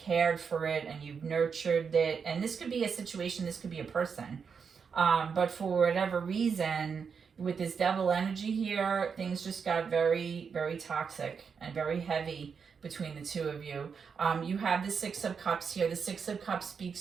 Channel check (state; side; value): quieter; left; 6.1 dB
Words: for it, and you've nurtured it. And this could be a situation, this could be a person. But for whatever reason, with this devil energy here, things just got very, very toxic and very heavy between the two of you. You have the Six of Cups here. The Six of Cups